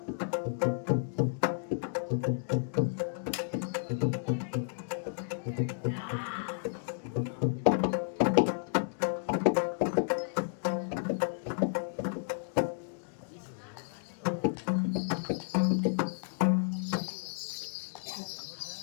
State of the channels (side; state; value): right; silent; digital silence